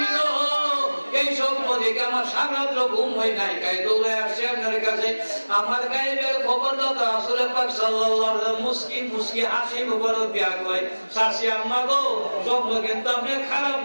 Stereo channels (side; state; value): both; inverted; correlation -1.00